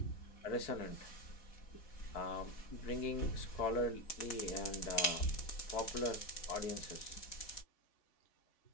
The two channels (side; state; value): right; late; 4.1 ms